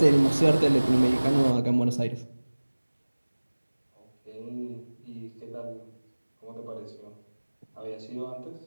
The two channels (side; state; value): both; inverted; correlation -1.00